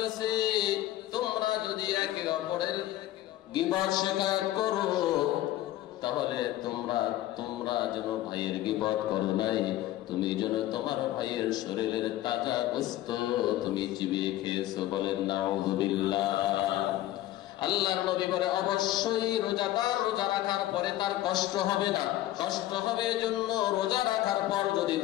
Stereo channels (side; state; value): right; quieter; 14.6 dB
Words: তোমরা যদি একে অপরের গীবত শিকায়ত করো, তাহলে তোমরা যেন ভাইয়ের গীবত করো নাই, তুমি যেন তোমার ভাইয়ের শরীরের তাজা গোশত তুমি চিবিয়ে খেয়েছো। বলেন নাউযুবিল্লাহ। আল্লাহর নবী বলে, অবশ্যই রোজাদার রোজা রাখার পরে তার কষ্ট হবে না। কষ্ট হবে এজন্য, রোজা রাখার পর যদি